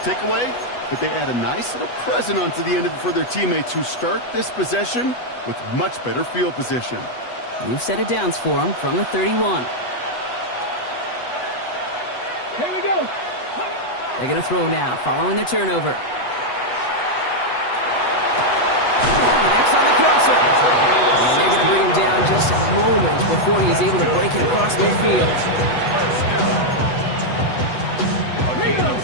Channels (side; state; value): right; late; 8.1 ms